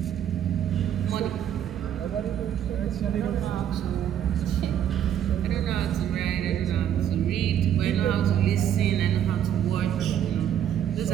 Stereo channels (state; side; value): quieter; left; 10.0 dB